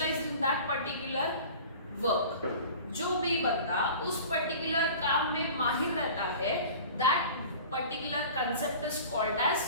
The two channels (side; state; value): both; inverted; correlation -0.41